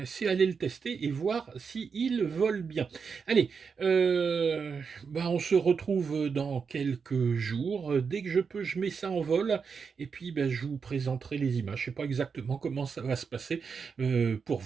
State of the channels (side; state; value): left; quieter; 5.7 dB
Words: tester et voir s'il vole bien. Allez, on se retrouve dans quelques jours. Dès que je peux, je mets ça en vol et puis je vous présenterai les images. Je sais pas exactement comment ça va se passer. Pour